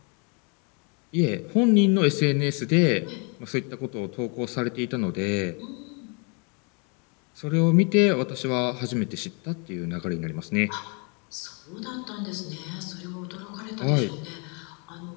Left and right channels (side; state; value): right; quieter; 34.5 dB